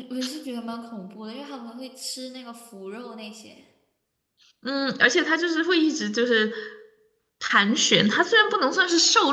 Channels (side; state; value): both; identical; correlation 1.00